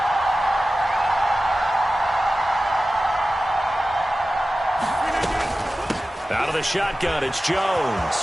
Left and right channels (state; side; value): normal; both; correlation 0.95